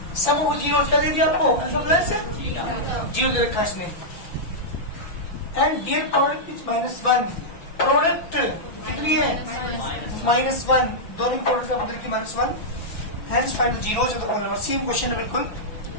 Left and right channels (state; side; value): late; right; 5.9 ms